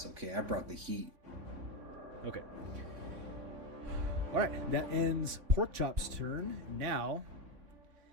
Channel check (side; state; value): left; late; 3.6 ms